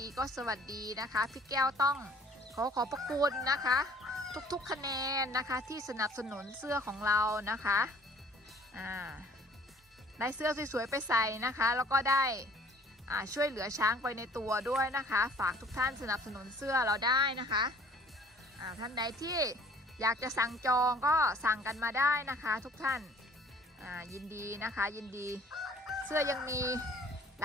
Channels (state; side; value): normal; both; correlation 0.53